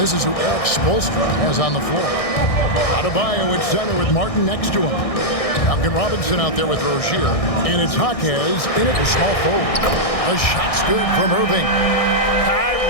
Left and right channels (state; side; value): late; right; 1.6 ms